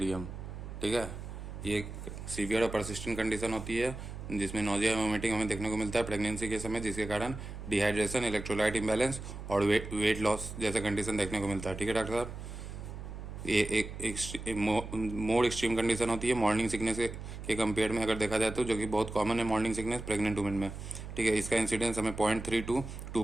ठीक है, ये एक सीवियर और परसिस्टेंट कंडीशन होती है जिसमें नोजिया वोमिटिंग हमें देखने को मिलता है प्रेगनेंसी के समय, जिसके कारण डिहाइड्रेशन, इलेक्ट्रोलाइट इम्बैलेंस और वेट लॉस जैसा कंडीशन देखने को मिलता है। ठीक है डॉक्टर साहब, ये एक मोर एक्सट्रीम कंडीशन होती है मॉर्निंग सिकनेस के कंपेयर में अगर देखा जाए तो, जो कि बहुत कॉमन है मॉर्निंग सिकनेस प्रेग्नेंट वुमेन में। ठीक है, इसका इंसिडेंस हमें 0.3 to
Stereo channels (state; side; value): noise; right; hum, 10 dB below the sound